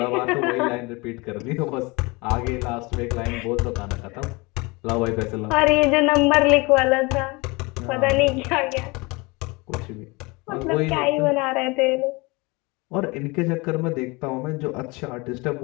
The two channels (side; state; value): right; quieter; 25.8 dB